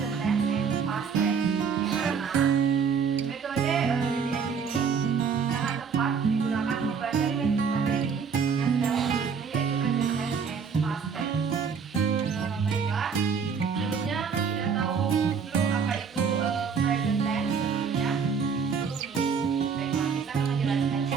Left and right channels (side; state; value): left; quieter; 6.1 dB